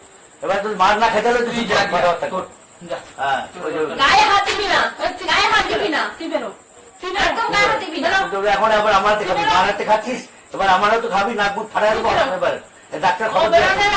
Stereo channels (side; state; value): both; identical; correlation 1.00